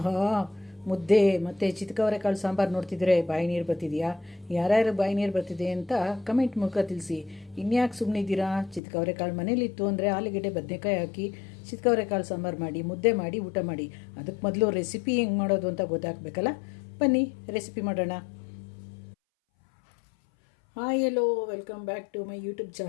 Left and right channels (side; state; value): right; drops out; at 8.8 s